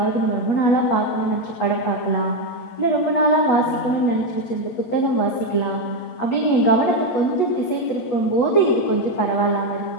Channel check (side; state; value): right; late; 8.3 ms